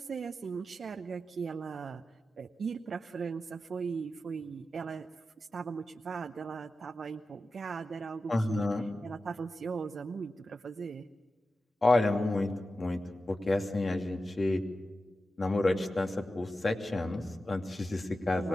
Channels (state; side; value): normal; both; correlation 0.92